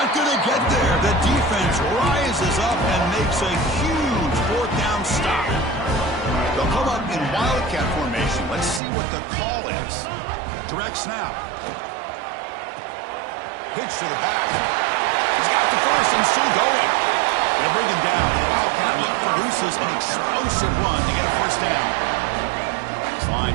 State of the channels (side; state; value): left; drops out; at 8.8 s